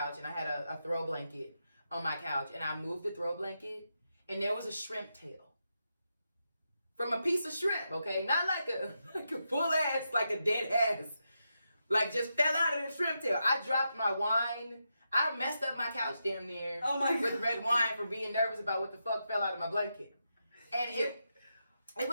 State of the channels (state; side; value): inverted; both; correlation -0.86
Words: and I had a throw blanket on my couch, and I moved the throw blanket, and there was a shrimp tail from a piece of shrimp, okay? Not like a full ass, like a dead ass. Like, just fell out of the shrimp tail. I dropped my wine. I messed up my couch damn near with red wine for being nervous about what the fuck fell out of my blanket. And